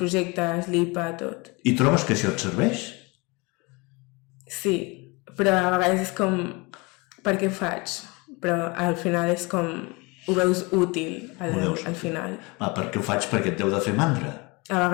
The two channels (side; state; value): right; quieter; 26.8 dB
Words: l'IPA, tot. I trobes que això et serveix? Sí, però a vegades és com, per què faig? Però al final és com, ho veus útil al final. Per què ho faig? Perquè et deu de fer mandra? A